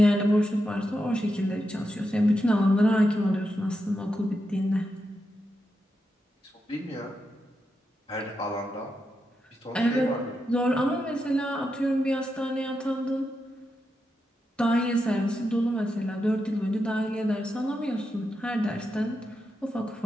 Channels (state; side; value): normal; both; correlation 0.86